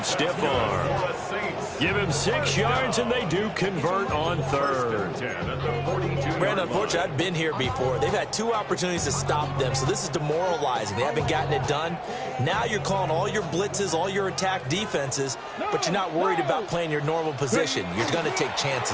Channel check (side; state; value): both; identical; correlation 1.00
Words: stiff arm. Give him 6 yards, and they do convert on third. Brandon, unfortunately, I've been here before. They've had 2 opportunities to stop them, so this is demoralizing. They haven't gotten it done. Now you're calling all your blitzes, all your attack defenses, but you're not worried about playing your normal position. You're going to take